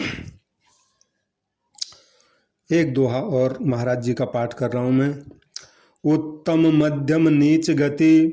एक दोहा और महाराज जी का पाठ कर रहा हूँ मैं। उत्तम मध्यम नीच गति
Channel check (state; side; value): identical; both; correlation 1.00